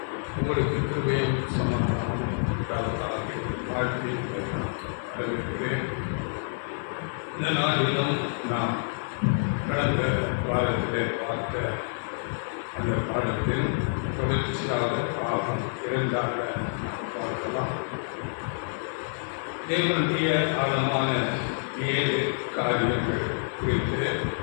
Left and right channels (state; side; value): silent; right; 59 dB below the other